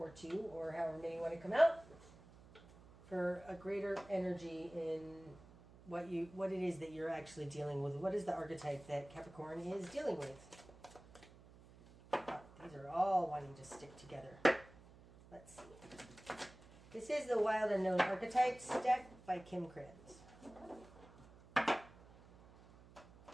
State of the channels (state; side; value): noise; right; hum, 21 dB below the sound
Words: two, or however many you want to come out, for a greater energy in what it is that you're actually dealing with. What is the archetype that Capricorn is dealing with? These are all wanting to stick together. Let's see. This is the Wild Unknown Archetypes deck by Kim Kranz.